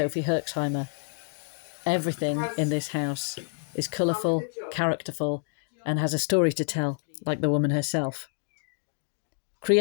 Herxheimer. Everything in this house is colourful, characterful, and has a story to tell, like the woman herself.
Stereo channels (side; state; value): right; silent; 59 dB below the other